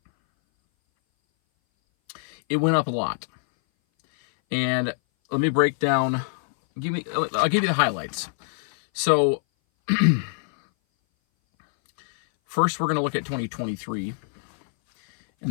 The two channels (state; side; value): silent; right; 59 dB below the other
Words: It went up a lot. And let me break down, I'll give you the highlights. So first we're going to look at 2023,